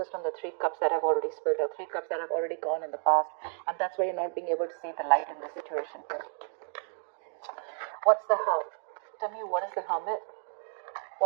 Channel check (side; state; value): left; silent; 57 dB below the other